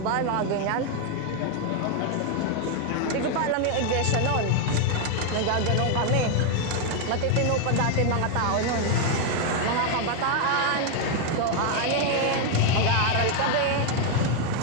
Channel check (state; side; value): different; both; correlation 0.00